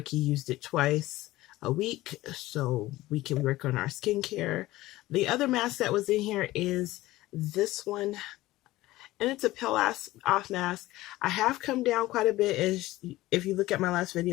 used it twice a week so we can work on our skincare. The other mask that was in here is this one, and it's a peel off mask. I have come down quite a bit. As if you look at my last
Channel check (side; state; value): right; quieter; 17.4 dB